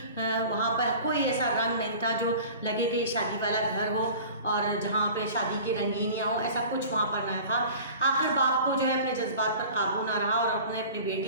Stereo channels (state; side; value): inverted; both; correlation -0.42